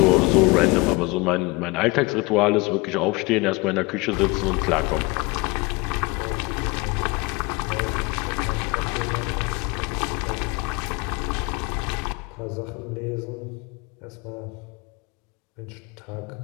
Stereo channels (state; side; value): quieter; right; 25.3 dB